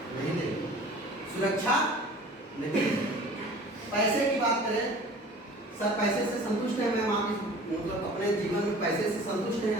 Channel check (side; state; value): both; normal; correlation 0.44